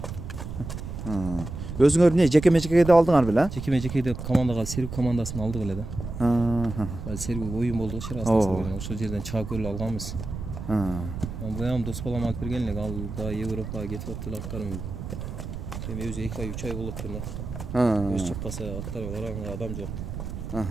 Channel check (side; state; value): right; noise; rumble, 8 dB below the sound